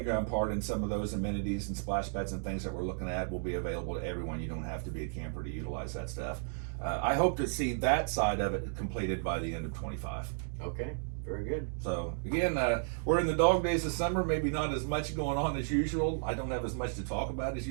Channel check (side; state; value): left; silent; digital silence